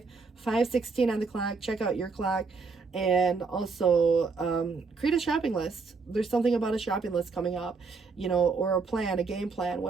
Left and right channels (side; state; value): left; quieter; 4.5 dB